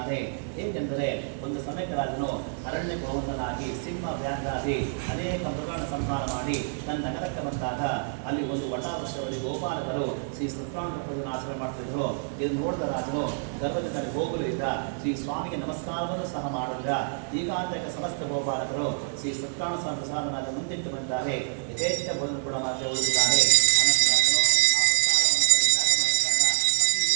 ಏಕೆಂದರೆ ಒಂದು ಸಮಯಕ್ಕೆ ರಾಜನು ಅರಣ್ಯ ಗೋವಂದನಾಗಿ ಸಿಂಹ ವ್ಯಾಘ್ರಾದಿ ಅನೇಕ ಮೃಗಗಳನ್ನು ಸಂಹಾರ ಮಾಡಿ ತನ್ನ ನಗರಕ್ಕೆ ಬಂದಾಗ ಅಲ್ಲಿ ಒಂದು ವಟಾವೃಕ್ಷದಲ್ಲಿ ಗೋಪಾಲಕರು ಶ್ರೀ ಸತ್ಯನಾರಾಯಣ ಪೂಜೆಯನ್ನು ಆಚರಣೆ ಮಾಡ್ತಿದ್ರು. ಇದನ್ನು ನೋಡಿದ ರಾಜನು ಗರ್ಭದಿಂದ ಹೋಗಲಿಲ್ಲ. ಶ್ರೀ ಸ್ವಾಮಿಗೆ ನಮಸ್ಕಾರವನ್ನು ಸಹ ಮಾಡಿಲ್ಲ. ಈಗಾಂತಕ ಸಮಸ್ತ ಗೋಪಾಲಕರು ಶ್ರೀ ಸತ್ಯನಾರಾಯಣ ಪ್ರಸಾದನಾದ ಮುಂದಿಟ್ಟು ಬಂದಿದ್ದಾರೆ. ಯಥೇಚ್ಛ ಭೋಜನ ಕೂಡ ಮಾತ್ರ ಉಳಿದಿದ್ದಾರೆ. ಅನಂತರ ರಾಜನು ಆ ಪ್ರಸಾದವನ್ನು ಪರಿತ್ಯಾಗ ಮಾಡಿದಾಗ ಅತಿ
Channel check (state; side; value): silent; left; 58 dB below the other